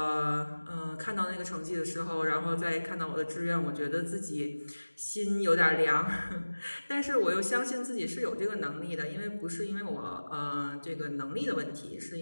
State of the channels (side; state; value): both; inverted; correlation -1.00